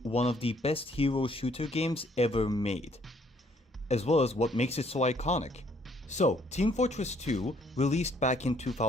one of the best hero shooter games ever made, as well as what makes it so iconic. So, Team Fortress 2 released back in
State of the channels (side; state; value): both; normal; correlation 0.65